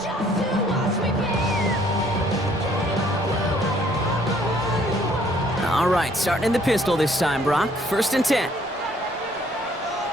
All right, starting in the pistol this time, Brock. 1st and 10.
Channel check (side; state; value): both; normal; correlation 0.62